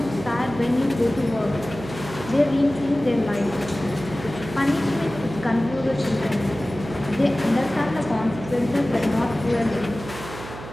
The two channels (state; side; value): noise; right; hum, 12 dB below the sound